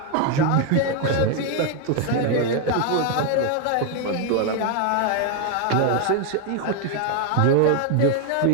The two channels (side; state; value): both; different; correlation 0.01